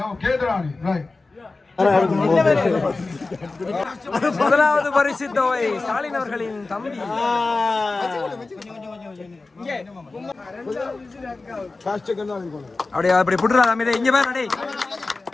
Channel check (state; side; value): quieter; right; 3.6 dB